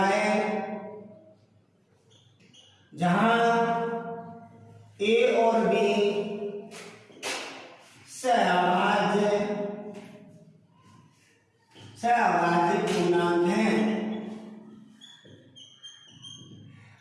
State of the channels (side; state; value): both; identical; correlation 1.00